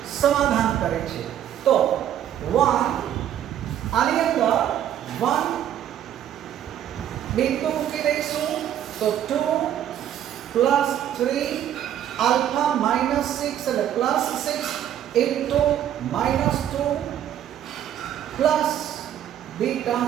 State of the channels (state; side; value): quieter; left; 10.7 dB